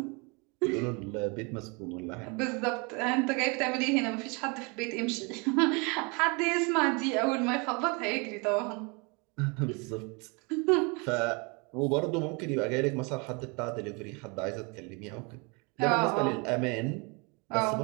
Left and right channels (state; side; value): quieter; left; 30.7 dB